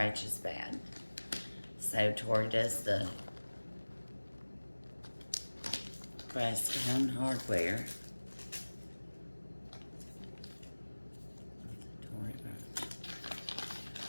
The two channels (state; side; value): inverted; both; correlation -1.00